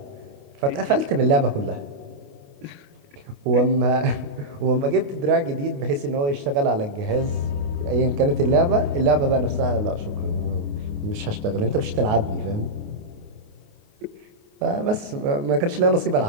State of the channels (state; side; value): late; left; 29 ms